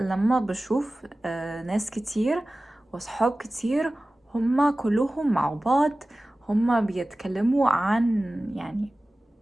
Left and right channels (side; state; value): both; normal; correlation 0.97